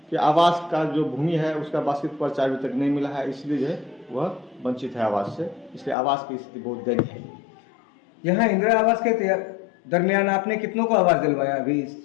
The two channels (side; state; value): right; drops out; at 6.0 s